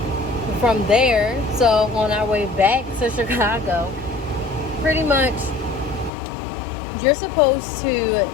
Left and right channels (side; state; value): right; drops out; at 6.1 s